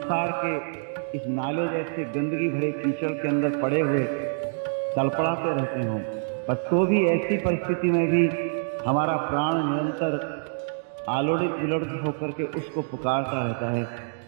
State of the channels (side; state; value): left; silent; digital silence